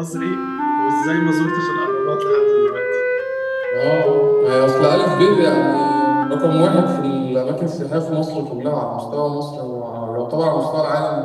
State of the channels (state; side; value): identical; both; correlation 1.00